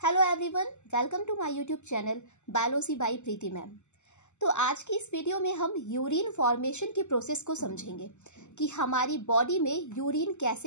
everyone, welcome to my YouTube channel biology by Preeti ma'am. तो आज की इस वीडियो में हम यूरिन फॉर्मेशन की प्रोसेस को समझेंगे कि हमारी बॉडी में यूरिन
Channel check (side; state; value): right; late; 0.83 ms